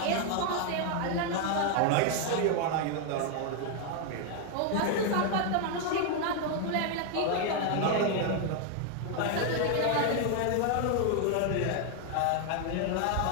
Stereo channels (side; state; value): both; different; correlation 0.00